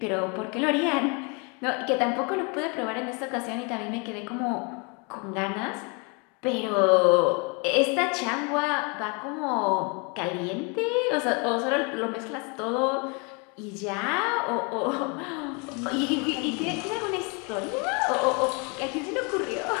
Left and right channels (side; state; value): right; quieter; 32.6 dB